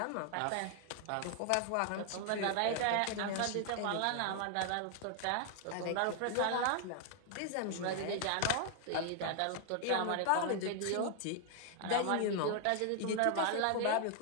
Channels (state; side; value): different; both; correlation 0.00